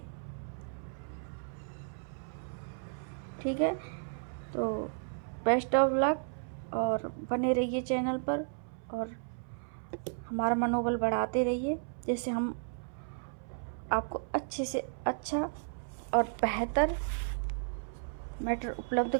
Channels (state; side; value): silent; left; 55 dB below the other